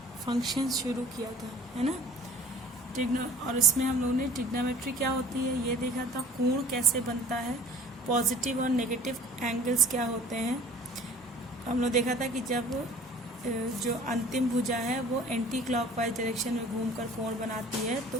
फंक्शंस शुरू किया था, है ना। और इसमें हम लोगों ने ट्रिग्नोमेट्री क्या होती है ये देखा था, कोण कैसे बनता है, पॉजिटिव और नेगेटिव एंगल्स क्या होते हैं। हम लोग देखा था कि जब जो अंतिम भुजा है वो एंटी क्लॉकवाइज डायरेक्शन में घूमकर कोण बनाती है तो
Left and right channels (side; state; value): both; normal; correlation 0.48